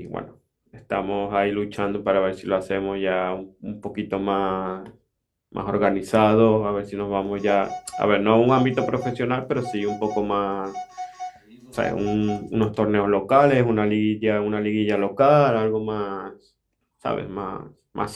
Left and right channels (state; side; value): identical; both; correlation 1.00